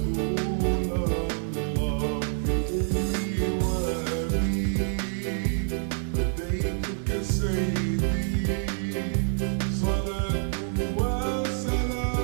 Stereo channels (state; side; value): silent; left; digital silence